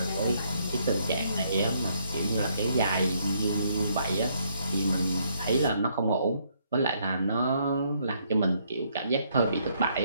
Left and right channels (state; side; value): inverted; both; correlation -0.71